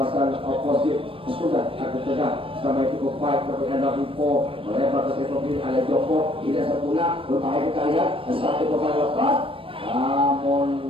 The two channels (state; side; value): late; left; 0.26 ms